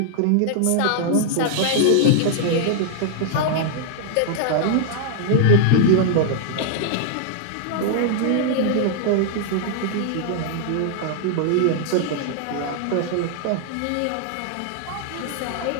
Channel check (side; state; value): both; different; correlation -0.01